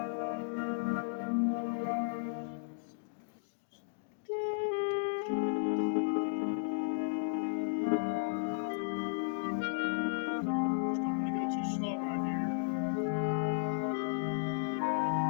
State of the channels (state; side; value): silent; right; digital silence